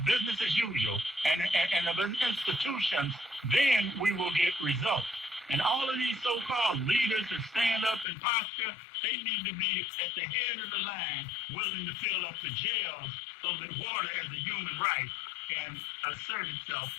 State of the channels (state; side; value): drops out; right; at 8.1 s